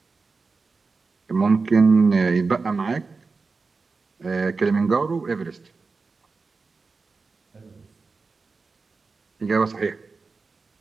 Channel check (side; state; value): left; quieter; 4.3 dB